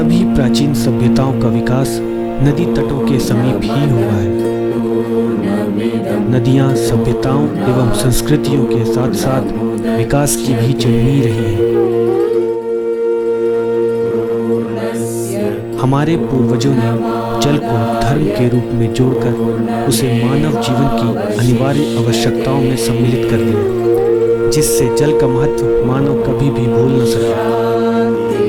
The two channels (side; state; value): both; identical; correlation 1.00